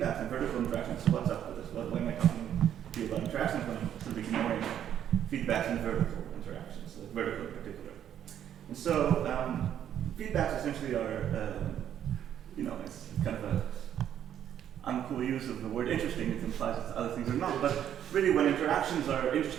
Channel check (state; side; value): quieter; left; 10.1 dB